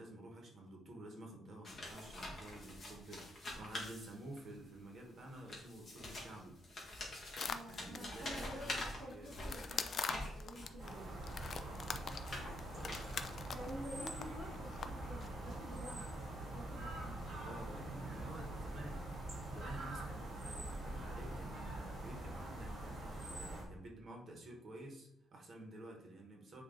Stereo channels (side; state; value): both; normal; correlation 0.77